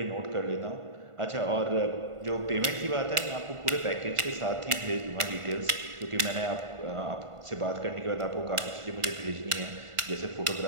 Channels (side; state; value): left; late; 1.5 ms